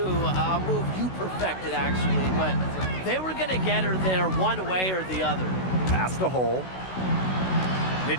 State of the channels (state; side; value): late; right; 16 ms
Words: A move you perfected, actually. But they were going to get her there one way or the other. Pass to Hole.